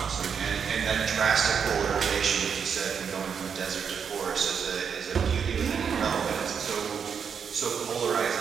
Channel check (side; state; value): left; quieter; 6.9 dB